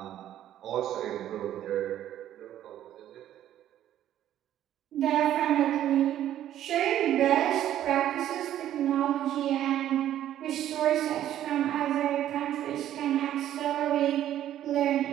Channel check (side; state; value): left; quieter; 11.8 dB